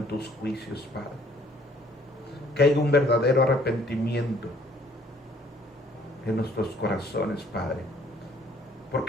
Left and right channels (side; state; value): both; normal; correlation 0.60